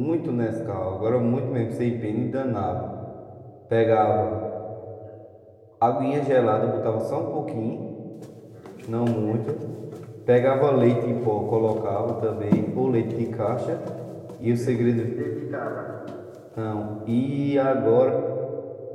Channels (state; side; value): identical; both; correlation 1.00